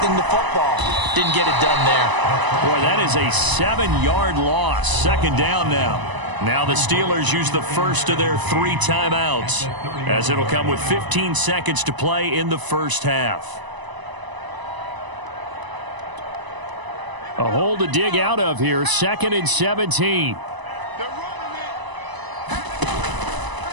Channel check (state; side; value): late; left; 1.0 ms